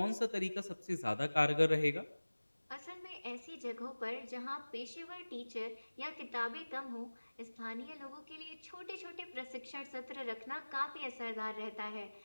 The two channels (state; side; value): inverted; both; correlation -1.00